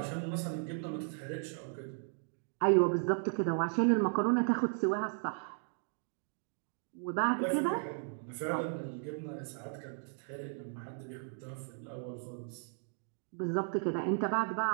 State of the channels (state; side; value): silent; left; 54 dB below the other